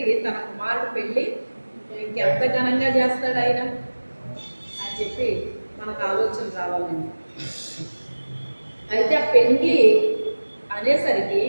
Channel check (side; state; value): both; inverted; correlation -1.00